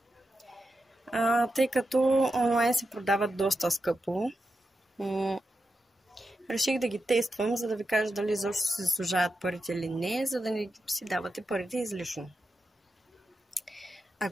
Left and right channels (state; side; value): normal; both; correlation 0.89